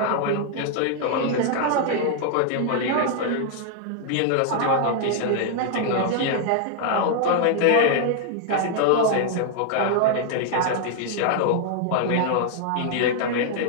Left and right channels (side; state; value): both; different; correlation 0.00